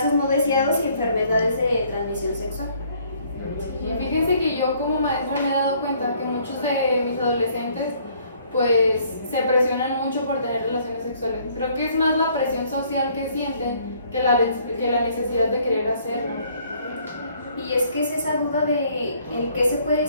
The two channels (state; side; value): inverted; both; correlation -0.62